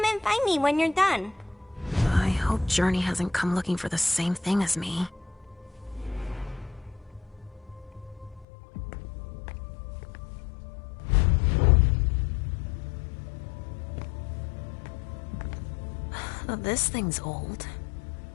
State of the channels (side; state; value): right; drops out; at 8.5 s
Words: and find me when you're done. I hope Journey hasn't come looking for the same thing as me. This thing's old.